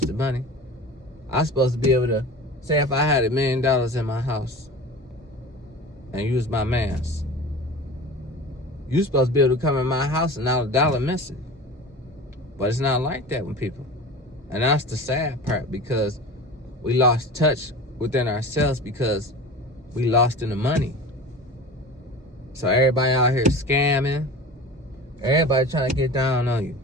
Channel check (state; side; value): normal; both; correlation 0.35